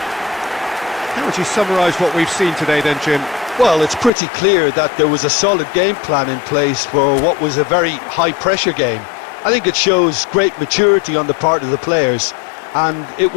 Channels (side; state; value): right; drops out; at 4.1 s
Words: How would you summarise what we've seen today then, Jim? Well, it's pretty clear that there was a solid game plan in place for what was a very high-pressure game. I think it shows great maturity on the part of the players, and it